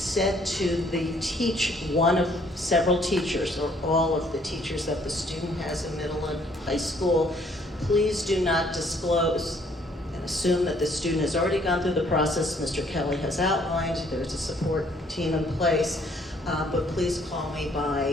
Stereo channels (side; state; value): both; normal; correlation 0.63